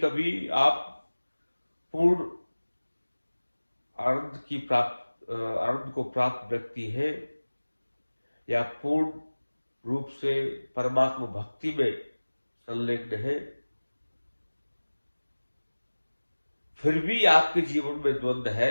आप पूर्ण आनंद को प्राप्त व्यक्ति है, या पूर्ण रूप से परमात्मा भक्ति में संलग्न है, फिर भी आपके जीवन में द्वंद्व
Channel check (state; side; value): inverted; both; correlation -1.00